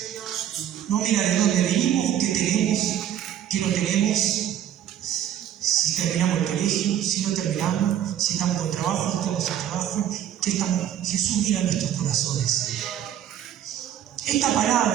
No mira de dónde venimos, qué tenemos, qué no tenemos, si terminamos el colegio, si no terminamos, si estamos con trabajo, no estamos sin trabajo, qué estamos. Jesús mira nuestros corazones. Esta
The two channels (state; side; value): quieter; left; 10.5 dB